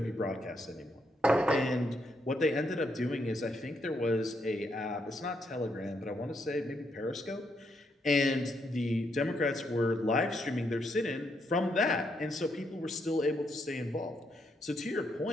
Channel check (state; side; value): normal; both; correlation 0.77